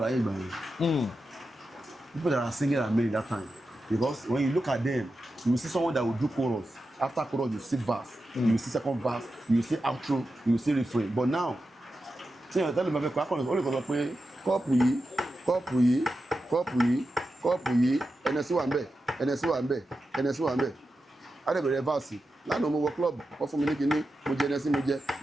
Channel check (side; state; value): both; normal; correlation 0.90